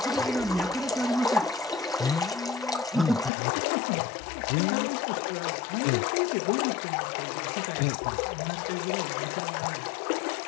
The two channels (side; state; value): right; drops out; at 3.3 s